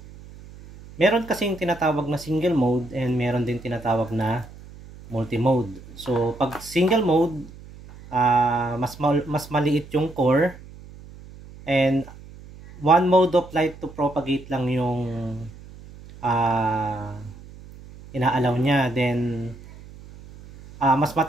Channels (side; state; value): right; noise; hum, 18 dB below the sound